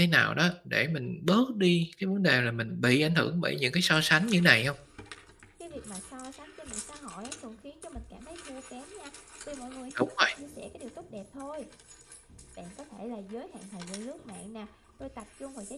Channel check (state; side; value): identical; both; correlation 1.00